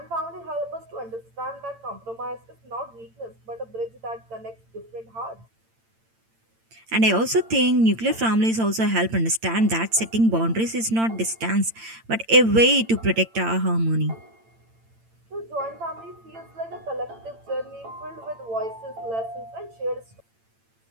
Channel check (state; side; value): late; left; 8.9 ms